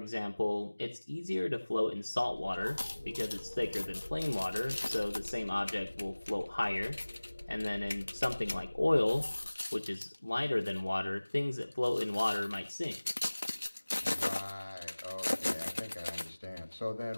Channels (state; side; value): inverted; both; correlation -1.00